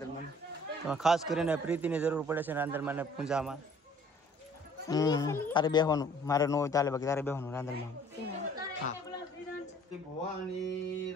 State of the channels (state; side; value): normal; both; correlation 0.55